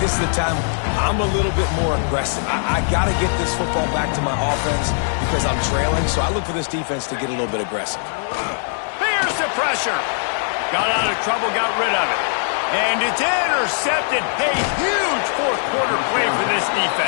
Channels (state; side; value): silent; right; digital silence